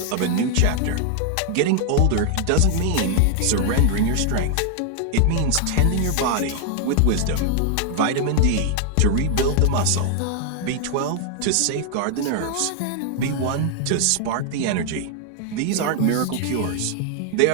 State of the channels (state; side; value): different; both; correlation 0.00